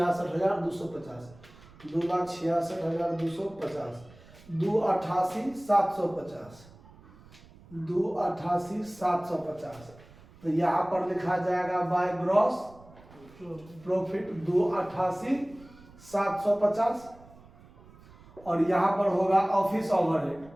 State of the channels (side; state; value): right; noise; rumble, 23 dB below the sound